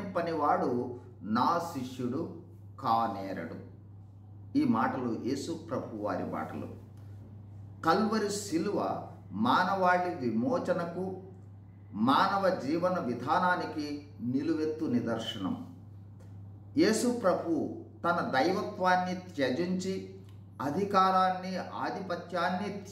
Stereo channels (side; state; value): both; identical; correlation 1.00